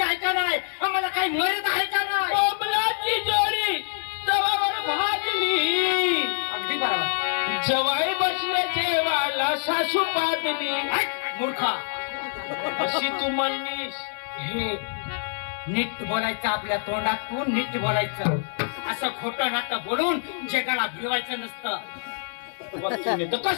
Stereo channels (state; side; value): silent; right; digital silence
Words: आहे का नाही, आम्हाला काही मर्यादा आहे का नाही. कोंबलाची जोडी तवावर भाजली अगदी बरोबर. जवाई बसले जेवायला सासू पादली मूर्खा अशी तू म्हणलीस. हे नीट बोलायचं, आपल्या तोंडातून नीट बोलायचं. असं खोटं नाटं बोलून जगाला भिवायचं नसतं. तर